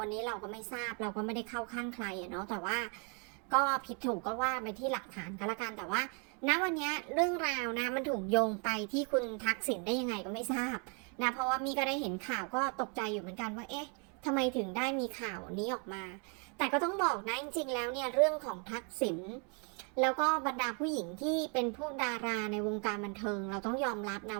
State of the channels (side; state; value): left; quieter; 37.4 dB